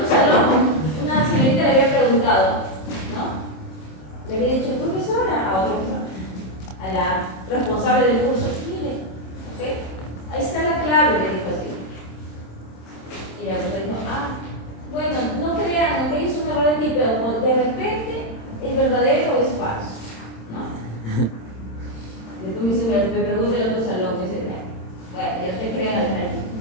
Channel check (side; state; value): right; late; 27 ms